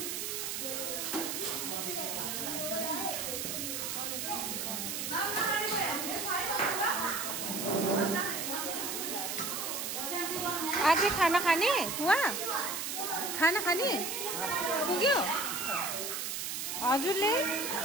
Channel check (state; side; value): noise; right; hiss, 3 dB below the sound